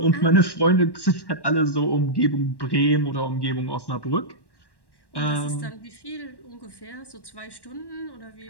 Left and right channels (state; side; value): late; right; 1.1 ms